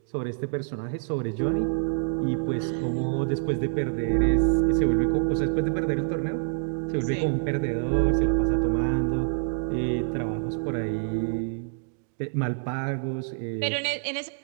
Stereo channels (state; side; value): silent; left; digital silence